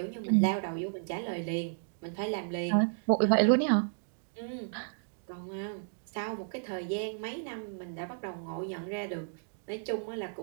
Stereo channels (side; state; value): left; silent; digital silence